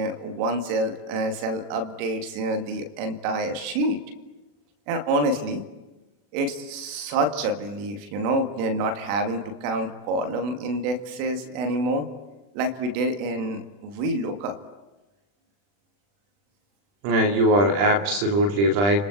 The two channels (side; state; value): left; late; 40 ms